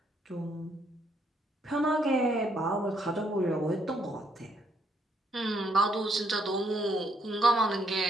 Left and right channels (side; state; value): both; normal; correlation 0.71